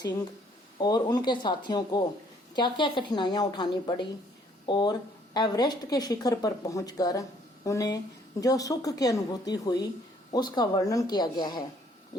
और उनके साथियों को क्या क्या कठिनाइयां उठानी पड़ी और एवरेस्ट के शिखर पर पहुंचकर उन्हें जो सुख की अनुभूति हुई उसका वर्णन किया गया है।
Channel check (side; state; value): both; normal; correlation 0.63